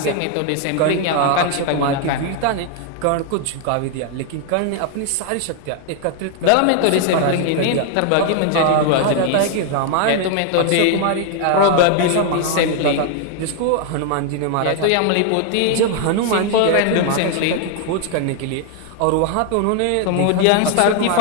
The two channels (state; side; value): different; both; correlation 0.00